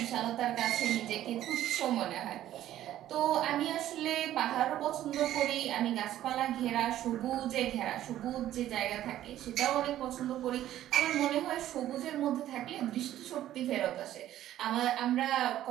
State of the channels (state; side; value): quieter; left; 12.8 dB